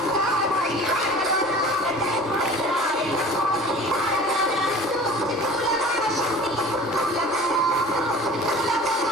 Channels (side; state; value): both; normal; correlation 0.43